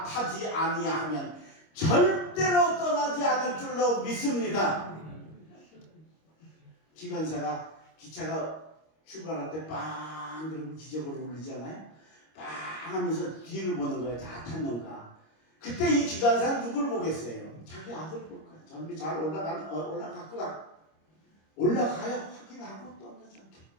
타지 아니하면 절대로 떠나지 않을 줄로 믿습니다. 기관사가 기차가 출발할 때 빵 그러고 기적으로 울리잖아요. 빵 하면서 뒤를 보는 거예요. 다 탔는가. 그때 이 기관사는 누굴 보겠어요? 자기 아들 볼 거예요. 전비 잘 올라갔구나. 올라가야 확인하고 떠나지 않게.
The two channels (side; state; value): right; late; 25 ms